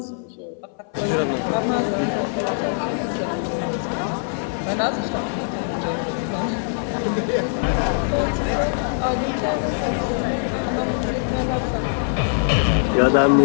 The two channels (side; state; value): right; silent; 59 dB below the other